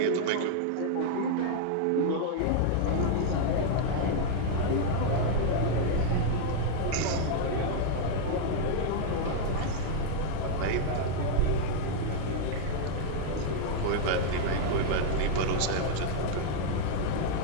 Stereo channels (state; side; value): different; both; correlation -0.01